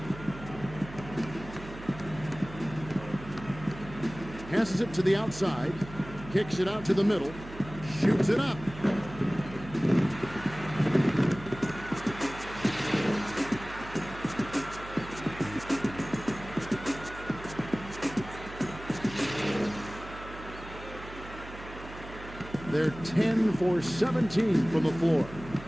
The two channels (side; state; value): right; noise; hum, 14 dB below the sound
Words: Passes it to the outside. Kicks it out to the middle. Shoots it up. They're 10 for 17 from the floor.